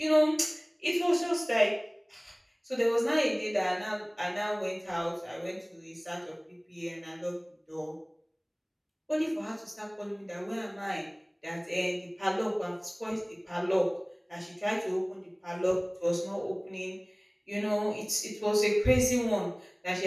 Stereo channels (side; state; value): both; identical; correlation 1.00